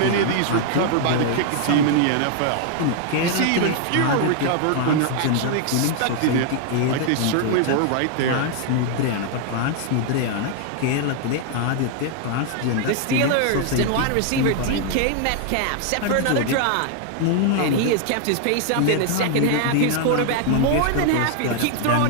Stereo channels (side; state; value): both; different; correlation 0.00